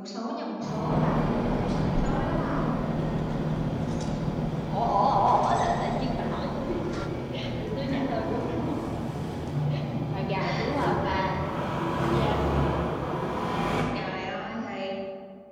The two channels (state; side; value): identical; both; correlation 1.00